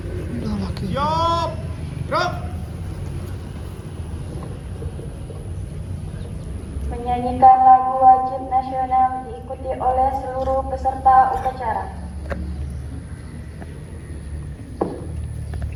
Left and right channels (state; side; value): identical; both; correlation 1.00